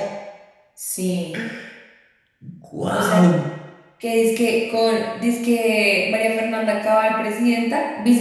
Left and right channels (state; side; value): identical; both; correlation 1.00